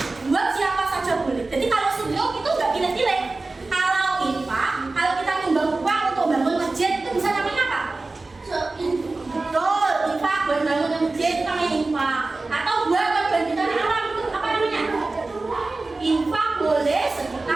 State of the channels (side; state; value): left; quieter; 3.4 dB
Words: buat siapa saja boleh. Jadi kalau sedekah itu nggak pilih-pilih. Kalau infak, kalau kita nyumbang uang untuk bangun masjid itu bisa namanya apa? Betul, infak buat bangun masjid itu namanya infak. Atau buat kebanjiran alam itu apa namanya? Infak boleh,